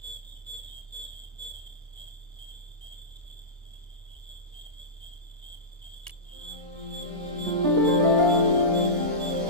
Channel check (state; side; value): normal; both; correlation -0.17